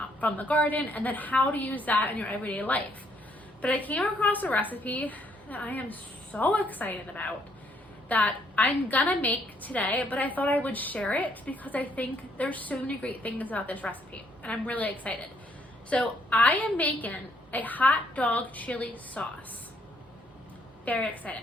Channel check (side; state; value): both; normal; correlation 0.69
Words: from the garden, and then how to use that in your everyday life. But I came across a recipe that I am so excited about that I'm gonna make today, but I thought I would share it because I think there's so many great things about this recipe and I'm really excited. So I am making a hot dog chili sauce. Very excited.